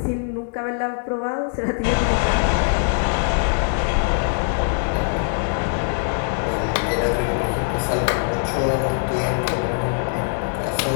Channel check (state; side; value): silent; right; 64 dB below the other